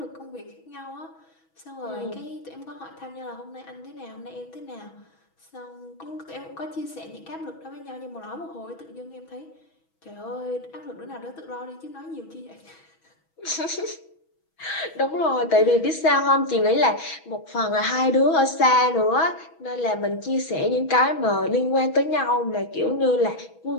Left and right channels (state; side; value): late; right; 6.2 ms